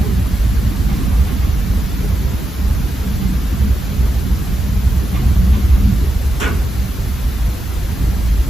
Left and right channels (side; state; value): both; normal; correlation 0.87